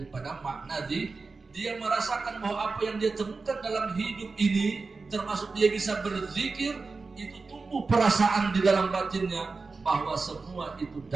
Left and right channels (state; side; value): quieter; left; 4.1 dB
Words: makna dia merasakan bahwa apa yang dia temukan dalam hidup ini, termasuk dia bisa berzikir, itu tumbuh perasaan di dalam batinnya bahwa semua itu